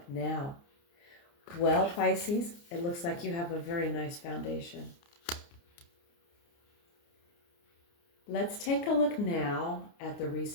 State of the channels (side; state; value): right; late; 29 ms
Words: now. Well, Pisces, it looks like you have a very nice foundation. Let's take a look now at the